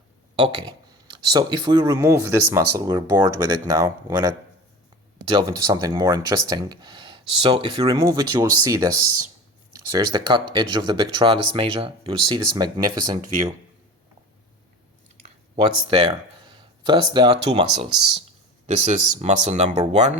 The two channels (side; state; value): both; normal; correlation 0.35